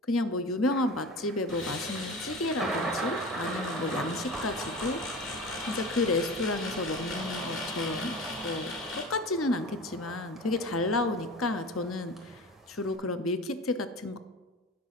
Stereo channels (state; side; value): normal; both; correlation 0.33